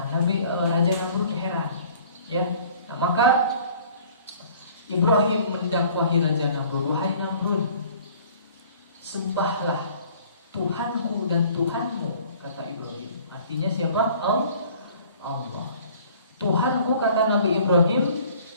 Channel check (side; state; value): both; inverted; correlation -0.52